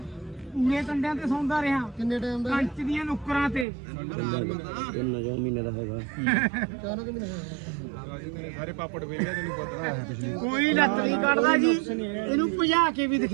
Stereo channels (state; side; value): drops out; left; at 3.7 s